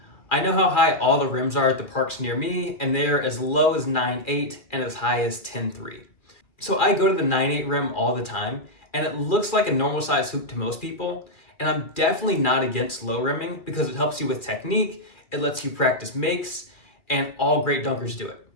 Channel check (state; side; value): late; right; 2.4 ms